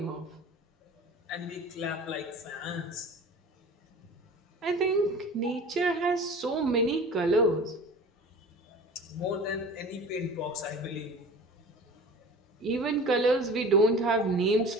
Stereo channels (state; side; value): normal; both; correlation 0.39